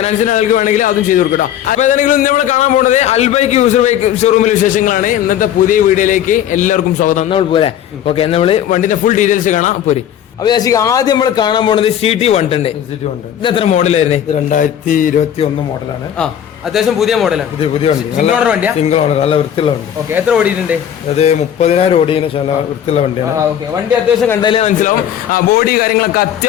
ആൾക്ക് വേണമെങ്കിൽ അതും ചെയ്തു കൊടുക്കട്ടോ. അപ്പൊ ഏതാണെങ്കിലും നമ്മൾ കാണാൻ പോകുന്നത് അൽബൈക്ക് യൂസർ ബൈക്ക് ഷോറൂമിലെ വിശേഷങ്ങളാണ്. ഇന്നത്തെ പുതിയ വീഡിയോയിലേക്ക് എല്ലാവർക്കും സ്വാഗതം. നമ്മൾ പോലെ ഓക്കെ, നമ്മൾ വണ്ടിന്റെ ഫുൾ ഡീറ്റെയിൽസ് കാണാം പോരി. അപ്പൊ യാസിക ആദ്യം നമ്മൾ കാണാൻ പോകുന്നത് CT 110. ഇത് എത്ര മോഡലായിരുന്നു? 2021 മോഡലാണ്. അത്യാവശ്യം പുതിയ മോഡലാണ്. സിംഗിൾ ഓണർ വണ്ടിയാ? സിംഗിൾ ഓണർ, നല്ല വൃത്തിയുള്ള വണ്ടി. ഓക്കെ, എത്ര ഓടിയിട്ടുണ്ട്? അത് 30,000 ഓടിയതിനു ശേഷം വൃത്തിയുള്ള വണ്ടിയാണ്. വണ്ടി അത്യാവശ്യം കണ്ടാലേ മനസ്സിലാവും. ബോഡി കാര്യങ്ങളൊക്കെ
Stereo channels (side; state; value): right; quieter; 10.1 dB